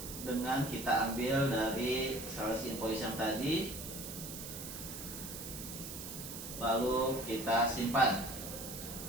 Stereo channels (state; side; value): noise; right; hiss, 9 dB below the sound